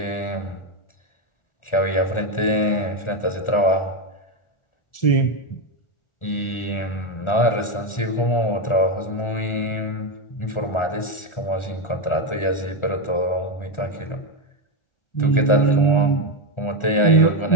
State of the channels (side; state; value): right; late; 1.4 ms